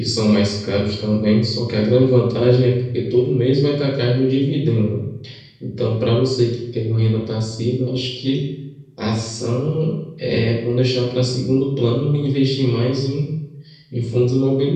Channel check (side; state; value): both; identical; correlation 1.00